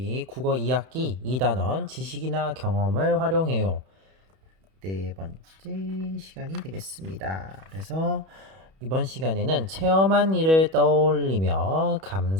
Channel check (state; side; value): late; left; 31 ms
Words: 국어 2학기 2단원 지식이나 경험을 활용해요. 네 번째 시간이 되겠습니다. 그래서 이번 시간에는 체험한 일을 떠올리며